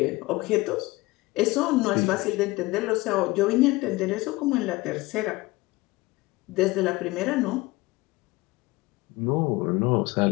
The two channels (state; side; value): quieter; right; 21.3 dB